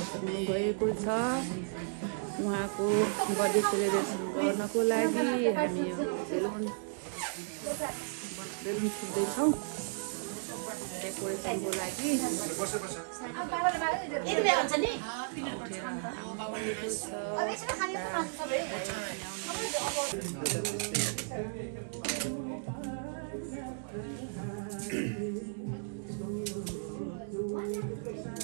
पुग्नु भएको छ। उहाँको बर्थडे सेलिब्रेसन गर्नको लागि हामी बेलुन फुट्दैछौँ डेकोरेसनको लागि।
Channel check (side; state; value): left; silent; digital silence